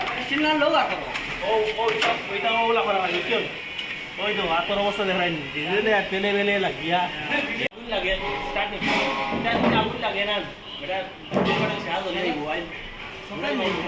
স্টিলনার লো আর করো ওইটা ওলা করা লাগে বুঝছো ওই তো হাতের অবস্থা দেখাই ডিজেলে আর তেলে বেলে লাগিয়া আগুন লাগে স্টার্ট আগুন লাগে না বেটা সাহায্য হয়ে যাইব আইন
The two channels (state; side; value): identical; both; correlation 1.00